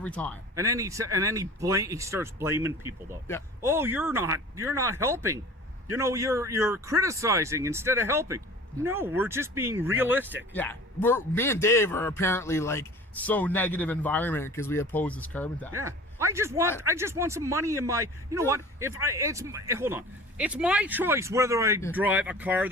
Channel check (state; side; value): normal; both; correlation 0.42